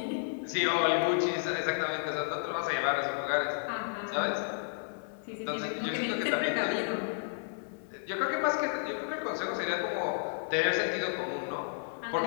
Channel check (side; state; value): right; silent; 56 dB below the other